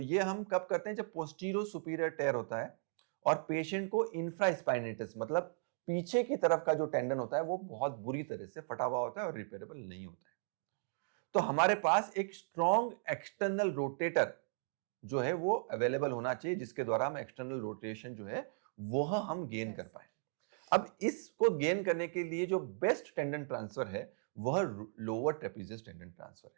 हम कब करते हैं जब पोस्टीरियर सुपीरियर टेयर होता है और पेशेंट को इंफ्रास्पाइनेटस मतलब पीछे की तरफ का जो टेंडन होता है वो बहुत बुरी तरह से फटा हुआ होता है और रिपेयरेबल नहीं होता है। तो हमारे पास एक स्ट्रॉन्ग एक्सटर्नल रोटेटर जो है वो अवेलेबल होना चाहिए जिसके द्वारा हम एक्सटर्नल रोटेशन जो है वह हम गेन कर कर पाए। सके। अब इसको गेन करने के लिए जो बेस्ट टेंडन ट्रांसफर है वह लोअर ट्रेपेजियस टेंडन ट्रांसफर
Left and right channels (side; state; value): left; silent; digital silence